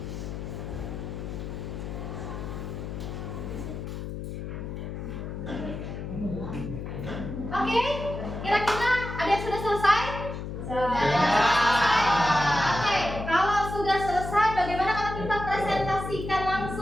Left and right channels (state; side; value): noise; left; hum, 7 dB below the sound